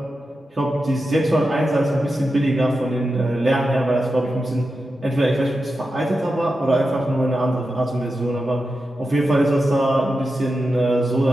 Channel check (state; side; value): normal; both; correlation 0.90